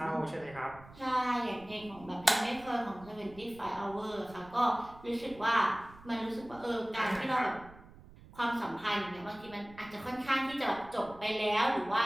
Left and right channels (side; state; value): right; noise; rumble, 20 dB below the sound